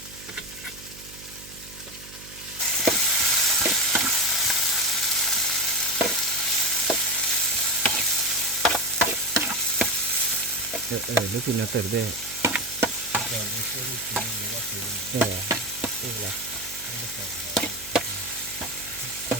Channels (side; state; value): right; noise; hum, 18 dB below the sound